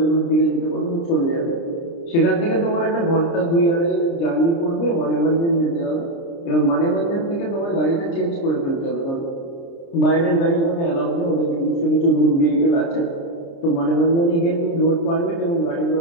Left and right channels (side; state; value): right; late; 30 ms